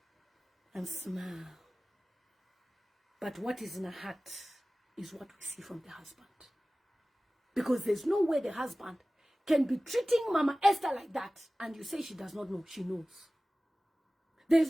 and smile. But what is in her heart is what we see from the husband. Because there's no way the husband can be treating Mama Esther like that, and you say she does not know. She knows.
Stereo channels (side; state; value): both; normal; correlation 0.97